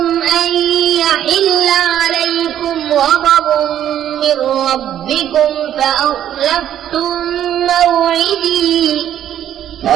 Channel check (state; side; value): quieter; left; 10.9 dB